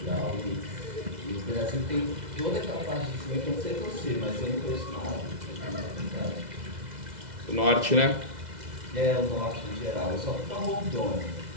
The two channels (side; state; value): left; late; 2.0 ms